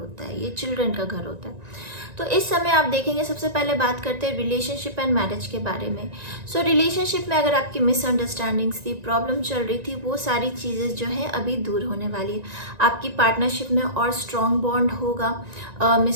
है, ये चिल्ड्रन का घर होता है। तो इस समय आप देखेंगे, सबसे पहले बात करते हैं रिलेशनशिप एंड मैरिज के बारे में। सो रिलेशनशिप में अगर आपकी मिसअंडरस्टैंडिंग्स थी, प्रॉब्लम चल रही थी, वो सारी चीज़ें जो है अभी दूर होने वाली है। आपकी पार्टनरशिप में और स्ट्रॉन्ग बॉन्ड होगा,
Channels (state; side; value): late; left; 1.9 ms